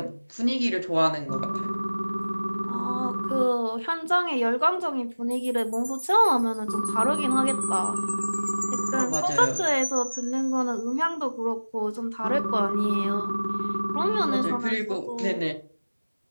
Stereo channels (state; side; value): inverted; both; correlation -1.00